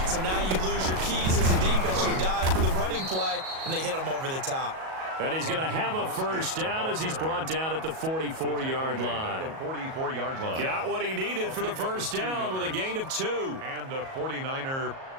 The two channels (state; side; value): late; left; 37 ms